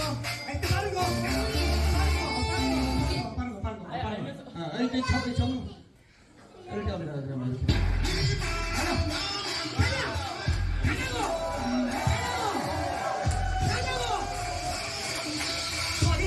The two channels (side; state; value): both; identical; correlation 1.00